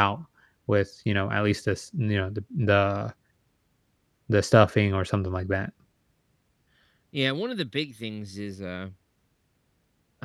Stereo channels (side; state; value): both; identical; correlation 1.00